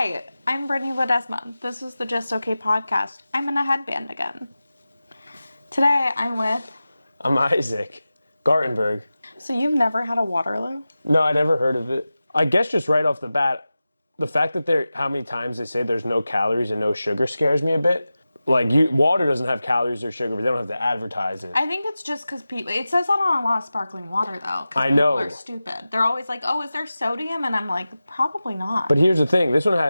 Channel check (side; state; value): both; inverted; correlation -0.95